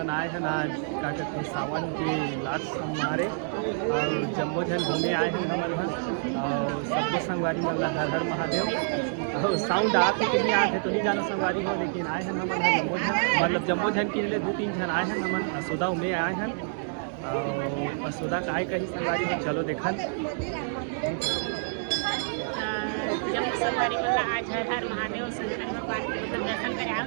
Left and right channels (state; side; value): silent; left; digital silence